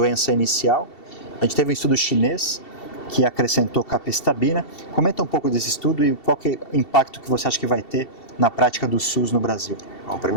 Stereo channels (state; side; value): late; right; 2.7 ms